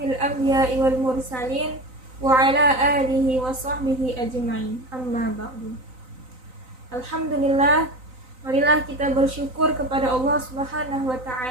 anbiya'i wal mursalin wa ala alihi wa sahbihi ajma'in. Amma ba'du. Alhamdulillah, marilah kita bersyukur kepada Allah Subhanahu wa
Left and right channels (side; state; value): left; late; 3.9 ms